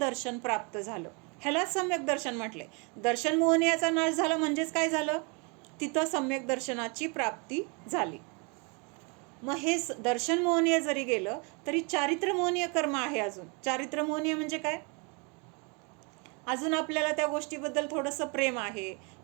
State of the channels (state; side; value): quieter; left; 32.8 dB